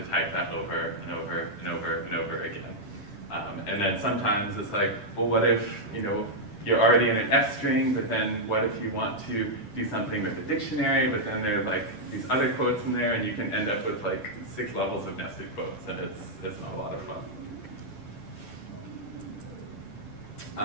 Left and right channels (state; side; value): late; right; 10 ms